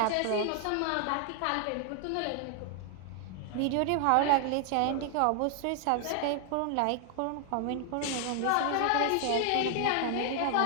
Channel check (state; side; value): different; both; correlation 0.00